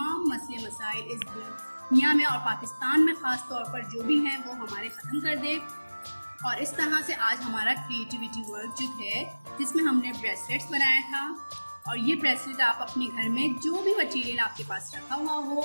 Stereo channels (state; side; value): inverted; both; correlation -1.00